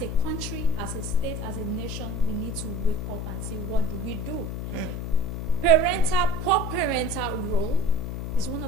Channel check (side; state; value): left; noise; hum, 5 dB below the sound